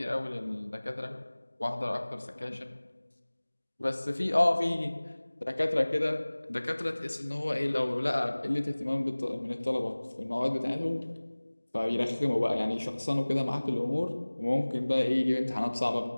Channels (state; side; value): inverted; both; correlation -1.00